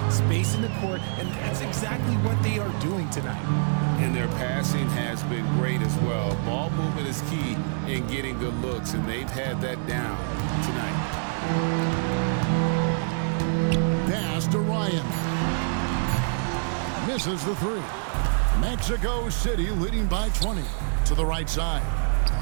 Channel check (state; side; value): silent; left; 59 dB below the other